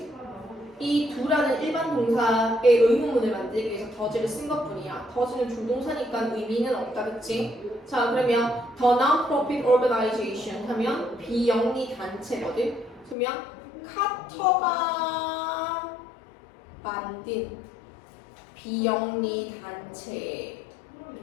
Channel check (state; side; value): drops out; right; at 13.2 s